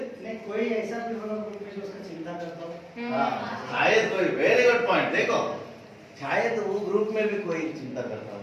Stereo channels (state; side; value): identical; both; correlation 1.00